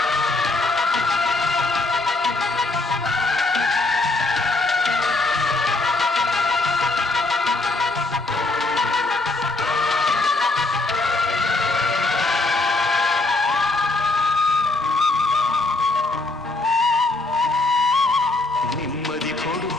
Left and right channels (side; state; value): right; quieter; 3.1 dB